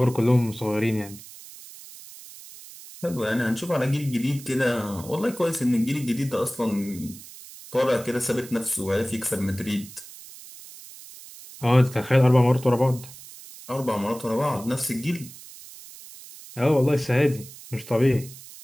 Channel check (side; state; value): right; noise; hiss, 17 dB below the sound